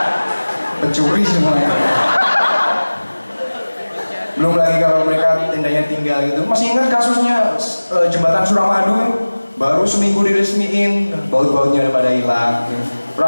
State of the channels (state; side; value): inverted; both; correlation -1.00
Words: Pencuri semuanya. Belum lagi kalau mereka tendanya tinggal gitu. Masih ingat kasusnya jembatan Suramadu? Baru seminggu diresmiin, baut-bautnya udah pada hilang.